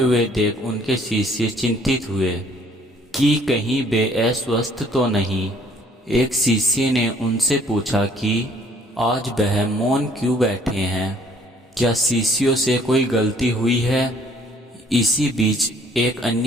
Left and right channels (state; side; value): normal; both; correlation 0.59